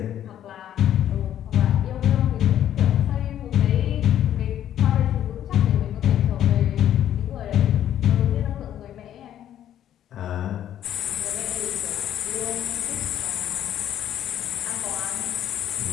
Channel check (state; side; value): quieter; right; 11.0 dB